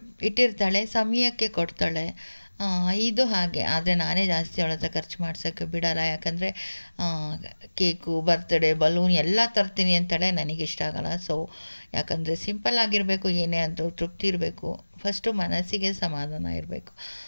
ಇಟ್ಟಿರ್ತಾಳೆ, ಸಮಯಕ್ಕೆ ಕೊಡ್ತಾಳೆ. ಇದು ಹಾಗೆ. ಆದರೆ ನಾನೇ ಜಾಸ್ತಿ ಅವಳ ಹತ್ರ ಖರ್ಚು ಮಾಡ್ಸೋಕ್ಕೆ ಬಿಡಲ್ಲ. ಯಾಕಂದರೆ ಕೇಕು, ಬರ್ತಡೇ, ಬಲೂನ್ ಎಲ್ಲ ತರ್ತೀನಿ ಅಂತಾಳೆ, ನನಗಿಷ್ಟ ಆಗಲ್ಲ. ಸೊ ಯಾಕಂದರೆ ಸಿಂಪಲ್ ಆಗಿರಬೇಕು, ಏನೇ ಆದರೂ ತೃಪ್ತಿ ಇರಬೇಕು, ಫಸ್ಟು ಮನಸ್ಸಿಗೆ ಸಮಾಧಾನ ಇರಬೇಕು.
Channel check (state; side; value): inverted; both; correlation -1.00